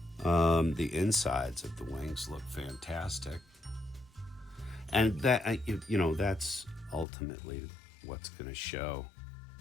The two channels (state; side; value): drops out; right; at 7.1 s